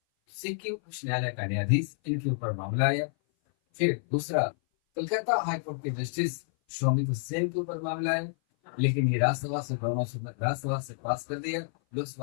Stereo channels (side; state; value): right; silent; 56 dB below the other